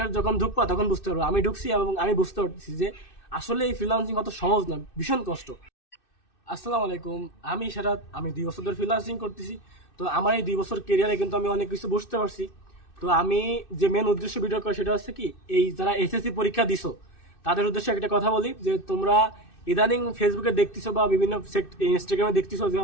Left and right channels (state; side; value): late; right; 2.6 ms